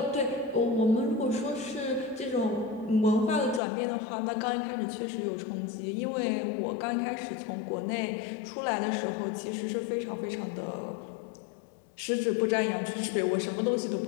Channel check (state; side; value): drops out; right; at 3.6 s